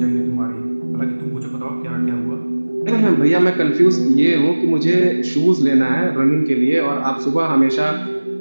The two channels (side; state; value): both; inverted; correlation -1.00